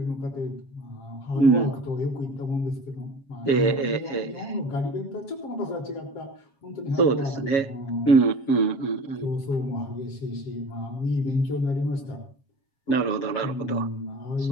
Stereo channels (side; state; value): right; late; 7.3 ms